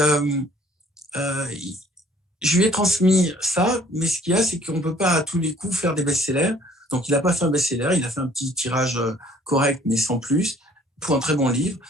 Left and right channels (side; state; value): both; normal; correlation 0.58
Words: je lui ai transmis ça, mais ce qu'il y a, c'est qu'on peut pas à tous les coups faire des best-sellers. Donc il a pas fait un best-seller, il a fait un petit tirage correct, mais sans plus, pour un très bon livre,